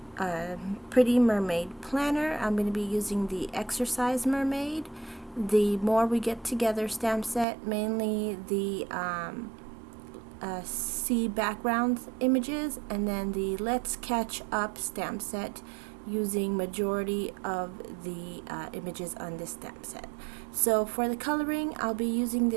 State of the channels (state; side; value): drops out; left; at 7.5 s